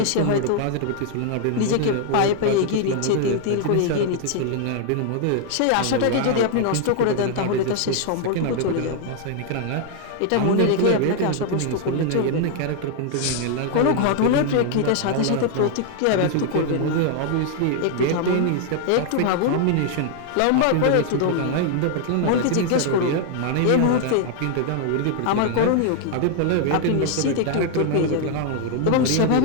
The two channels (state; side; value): different; both; correlation 0.00